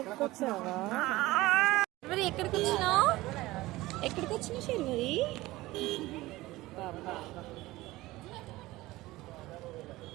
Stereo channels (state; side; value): quieter; left; 18.7 dB